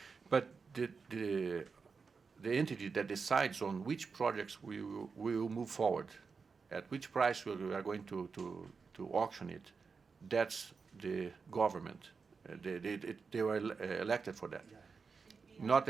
But the entity that decides on which projects we will move forward, at which price we are going to auction it, that's the government. They were elected for that, not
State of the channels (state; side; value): quieter; left; 5.1 dB